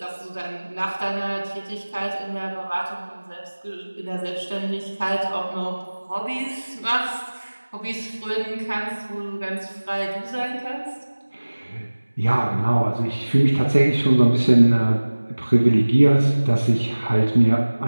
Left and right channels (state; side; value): inverted; both; correlation -1.00